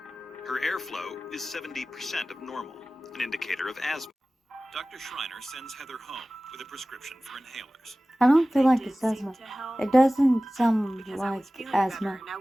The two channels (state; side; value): normal; both; correlation 0.97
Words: Her airflow is 70% of normal, an indicator of asthma. Dr. Schreiner sends Heather home with a prescription for inhalers. I don't feel They like did it's seem asthma. to help It doesn't sound because I like was feeling asthma. better and